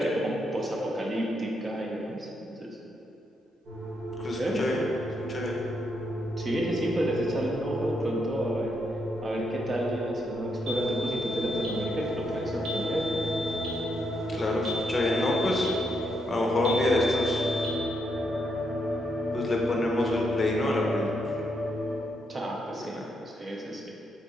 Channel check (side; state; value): both; normal; correlation 0.79